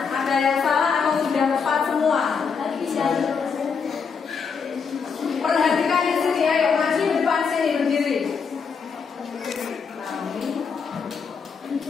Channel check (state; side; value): quieter; right; 5.8 dB